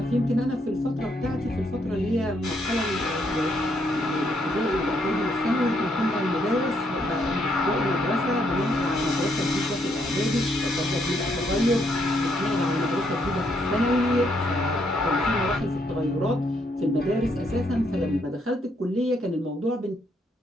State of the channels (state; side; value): normal; both; correlation 0.74